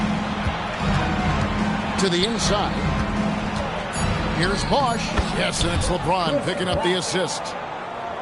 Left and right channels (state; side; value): identical; both; correlation 1.00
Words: To the inside. Here's Bosh. Yes, and it's LeBron picking up the assist.